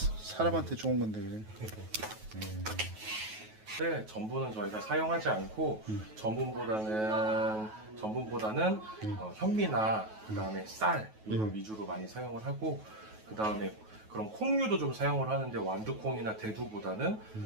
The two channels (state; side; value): late; left; 9.3 ms